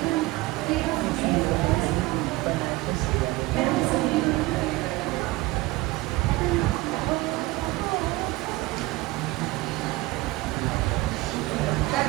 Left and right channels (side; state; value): left; quieter; 20.3 dB